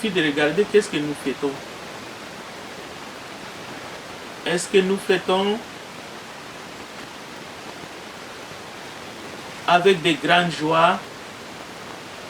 de regarder qu'est-ce que nous fêtons. Est-ce que nous fêtons avec des grandes joies,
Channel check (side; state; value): both; identical; correlation 1.00